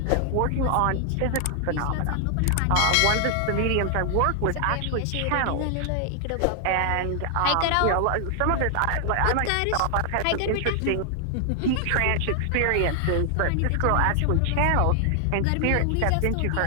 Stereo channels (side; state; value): both; different; correlation 0.00